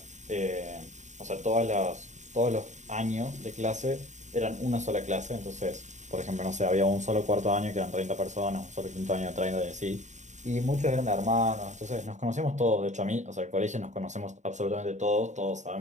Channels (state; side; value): late; left; 0.34 ms